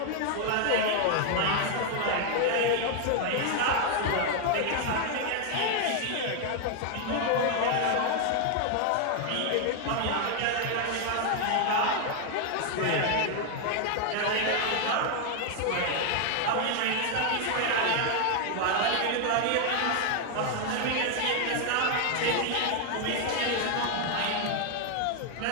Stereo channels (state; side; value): different; both; correlation 0.00